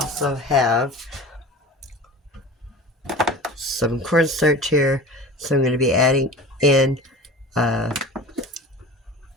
have some cornstarch here. So I'm going to be adding in 4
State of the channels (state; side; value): normal; both; correlation 0.36